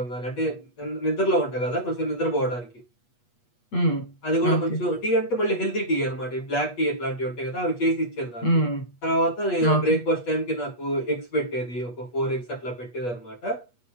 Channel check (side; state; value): right; late; 8.3 ms